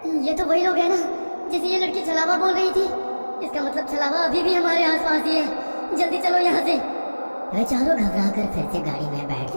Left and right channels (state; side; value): inverted; both; correlation -1.00